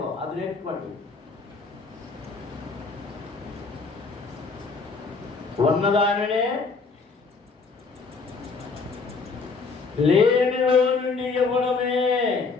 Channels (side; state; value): right; quieter; 4.5 dB